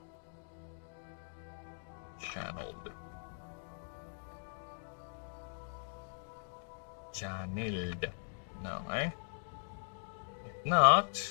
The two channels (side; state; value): right; silent; digital silence